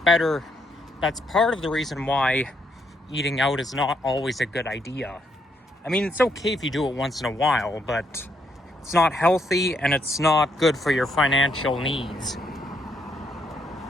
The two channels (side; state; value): both; normal; correlation 0.75